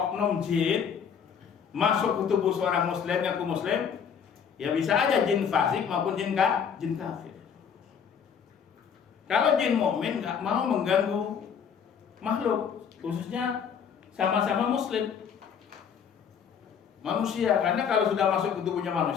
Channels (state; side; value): quieter; right; 7.3 dB